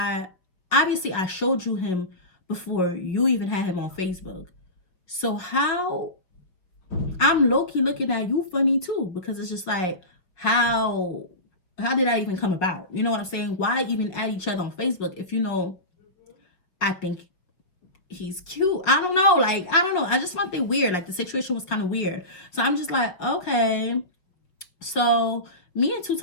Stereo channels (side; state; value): right; late; 5.4 ms